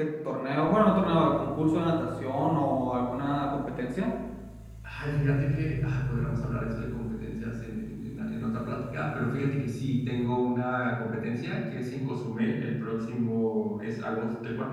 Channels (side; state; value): both; identical; correlation 1.00